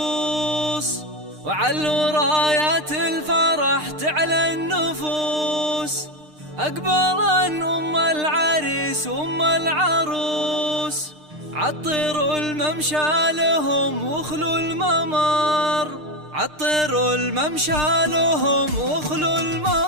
وعلوا رايات الفرح تعلى النفوس. أقبلا أم العريس وأم العروس، عطروا الممشى لهم واخلوا الممر، عطروا الممشى لهم واخلوا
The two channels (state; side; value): late; left; 6.6 ms